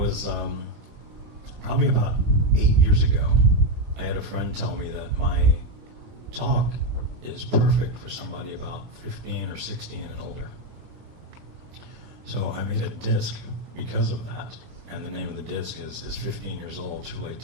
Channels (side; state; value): left; late; 17 ms